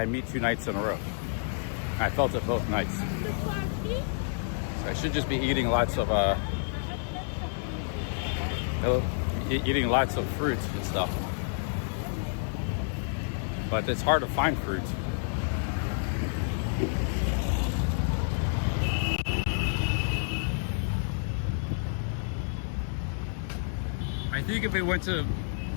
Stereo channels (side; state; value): right; silent; 58 dB below the other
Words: meat 2 nights in a row. I felt it both nights. So I should just be eating lots of eating lots of fruit and stuff. But it's hard to find fruit. I think if we went to